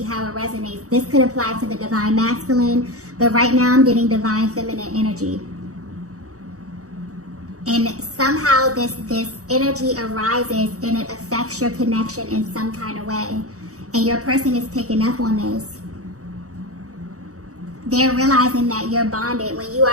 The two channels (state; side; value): late; left; 0.65 ms